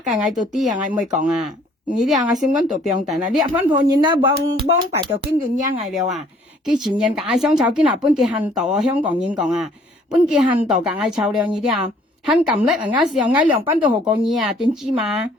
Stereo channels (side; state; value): both; normal; correlation 0.59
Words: 我到啲啊，我唔會講啊。你啲啊，我先講到病定啦，你分鋪人啦，幫白就經過嘢嗌了啊。佢前人夾香草，見下本嘅hand度啊，香港人講啊，本嘅hand度夾嗌臭了呢啲啊，hand咁叻啊，時候嗌兩班都學過嘢啊，點知嘛？